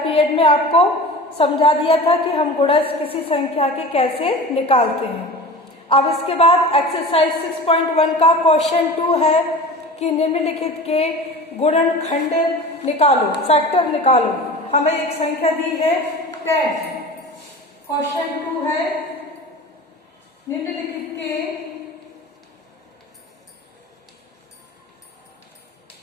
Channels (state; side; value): normal; both; correlation 0.35